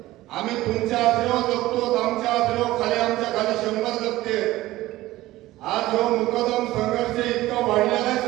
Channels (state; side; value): quieter; left; 16.8 dB